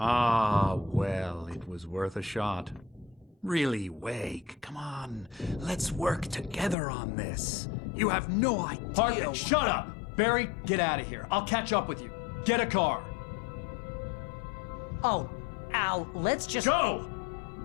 well, it was worth a shot. Really, Wake, come on. Let's work together on this. You have no idea... Hartman, shut up! Barry, get out of here. I'll catch up with you. Get a car. Oh, Al, let's just... Go!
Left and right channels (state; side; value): drops out; right; at 6.8 s